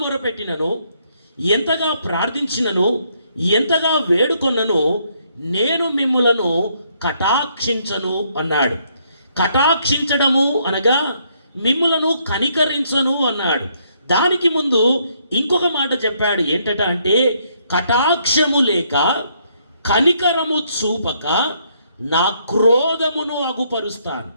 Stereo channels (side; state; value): both; inverted; correlation -0.71